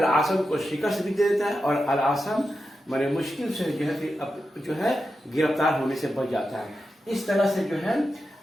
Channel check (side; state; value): both; normal; correlation 0.90